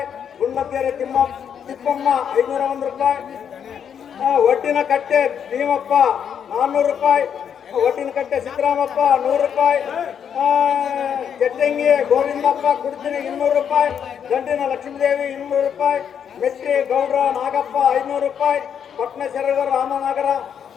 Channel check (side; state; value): right; quieter; 8.1 dB